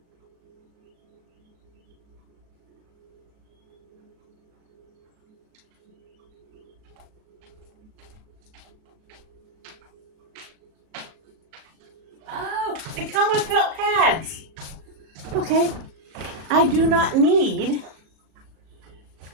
Oh, they come with felt pads. Okay. I do not need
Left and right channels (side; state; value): left; late; 38 ms